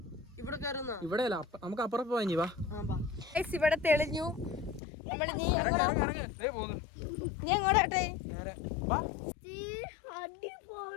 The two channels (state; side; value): drops out; right; at 4.8 s